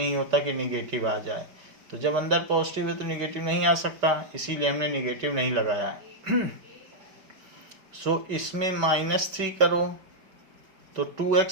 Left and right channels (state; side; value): late; left; 5.2 ms